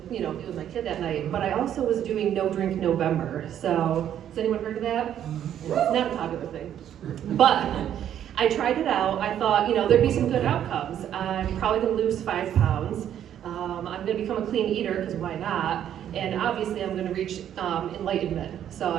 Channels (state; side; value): quieter; left; 10.3 dB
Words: be with my kid that night. But I also was doing No Drink November. So, has anyone heard of that? It's not a popular thing. But I tried it out. I thought, there'd be some good outcomes. I'm probably going to lose 5 pounds. I'm going to become a clean eater, because why not? And obviously I'm going to reach enlightenment. So